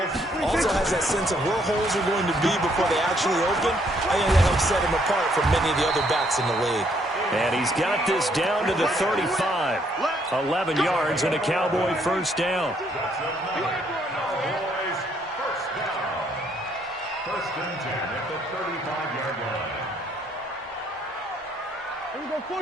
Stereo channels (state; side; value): normal; both; correlation 0.69